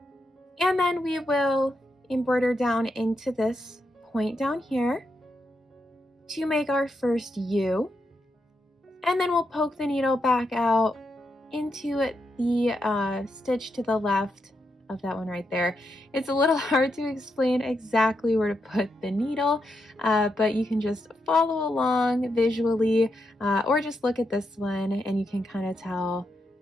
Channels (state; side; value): normal; both; correlation 0.83